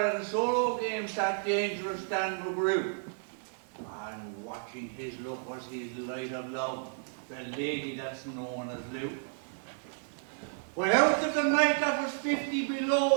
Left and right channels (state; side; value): silent; left; digital silence